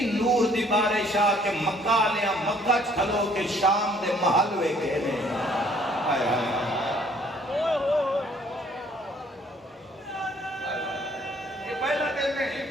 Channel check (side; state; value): both; normal; correlation 0.61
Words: نور دی بارش آ کہ مکہ لیا مکہ کھلو کے شام دے محل وے گئے نے. آئے آئے یہ پہلا دن